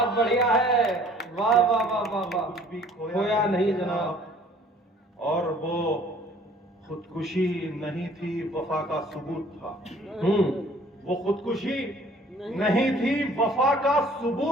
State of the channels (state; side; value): normal; both; correlation 0.55